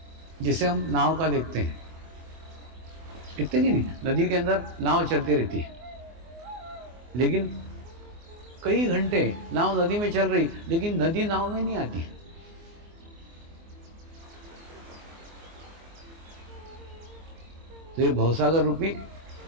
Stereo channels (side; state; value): left; late; 24 ms